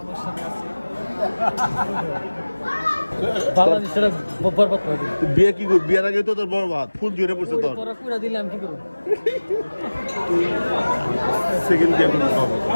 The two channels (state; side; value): inverted; both; correlation -1.00